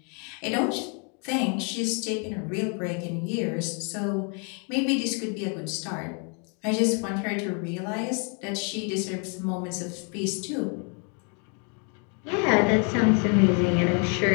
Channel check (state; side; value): quieter; right; 37.7 dB